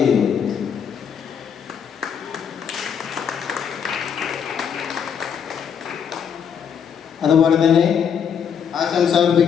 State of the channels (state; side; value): quieter; right; 7.6 dB